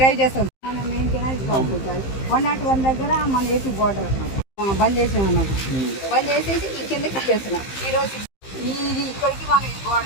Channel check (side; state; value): right; late; 15 ms